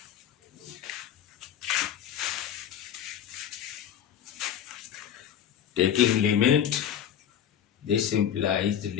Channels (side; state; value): right; quieter; 9.6 dB